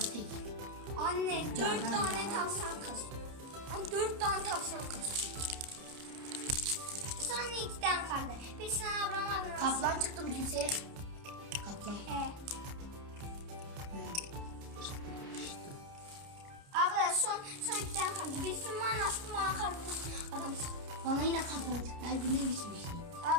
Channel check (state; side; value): late; left; 30 ms